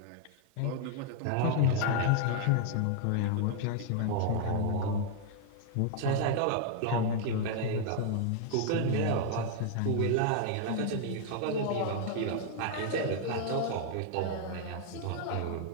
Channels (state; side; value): different; both; correlation 0.00